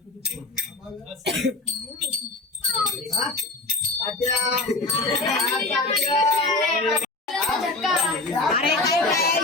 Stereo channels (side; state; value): right; quieter; 3.2 dB